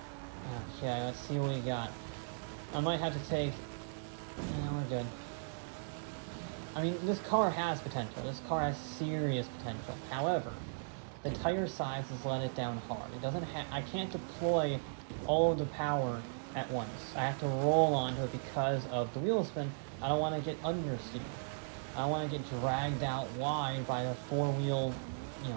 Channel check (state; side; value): silent; left; digital silence